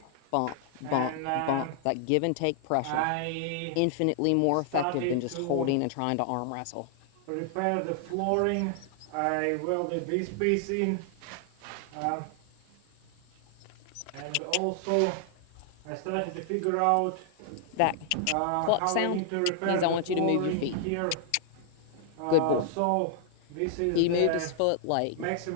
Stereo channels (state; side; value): different; both; correlation -0.01